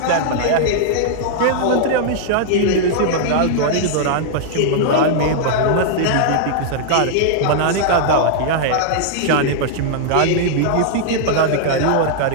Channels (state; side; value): different; both; correlation -0.01